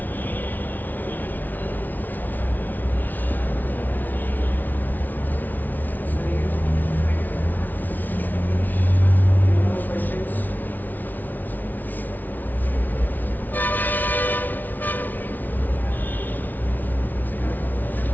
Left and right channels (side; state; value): right; late; 0.083 ms